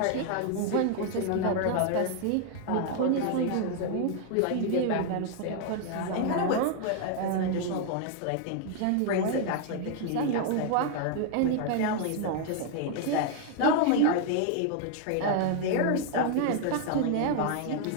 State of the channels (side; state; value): both; different; correlation 0.00